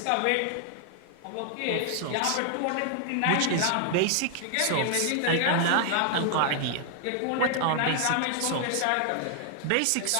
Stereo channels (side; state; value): both; different; correlation 0.00